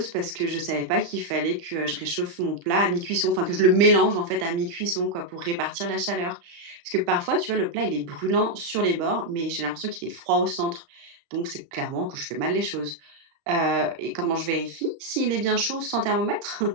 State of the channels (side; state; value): left; late; 35 ms